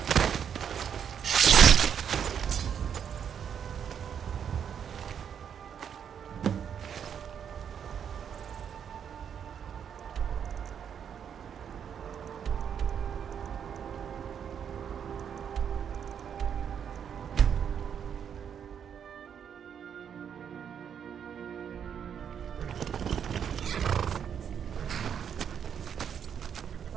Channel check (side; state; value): left; quieter; 8.1 dB